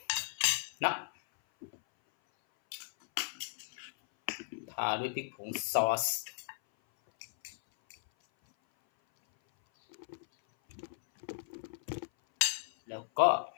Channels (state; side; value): silent; right; 54 dB below the other